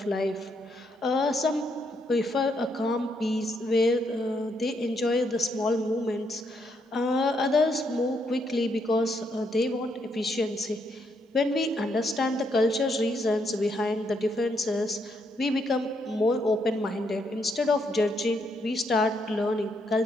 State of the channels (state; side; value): normal; both; correlation 0.76